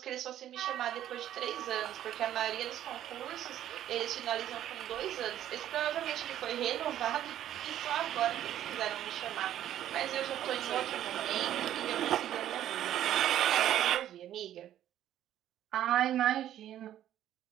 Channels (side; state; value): left; quieter; 11.8 dB